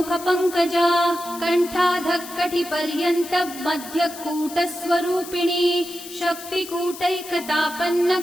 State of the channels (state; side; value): noise; left; hiss, 14 dB below the sound